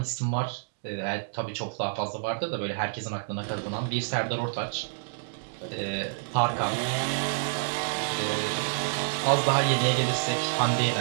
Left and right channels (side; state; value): left; silent; digital silence